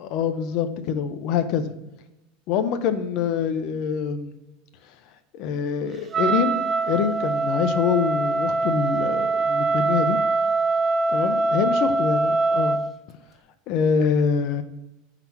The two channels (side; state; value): both; normal; correlation 0.56